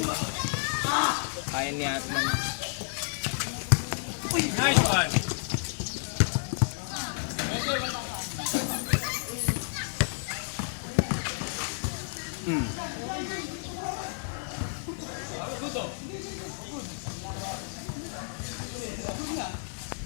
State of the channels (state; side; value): silent; right; 57 dB below the other